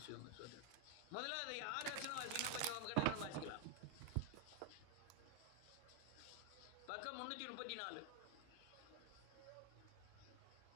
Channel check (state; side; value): different; both; correlation 0.00